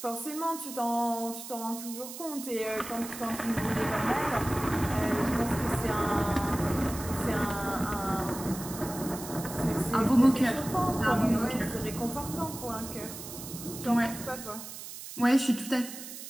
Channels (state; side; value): noise; right; hiss, 11 dB below the sound